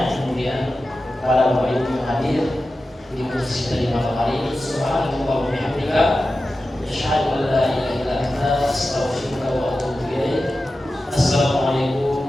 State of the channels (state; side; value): normal; both; correlation 0.93